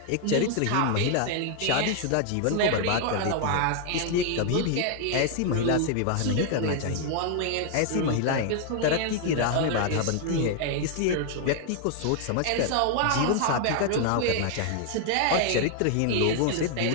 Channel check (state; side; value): different; both; correlation 0.00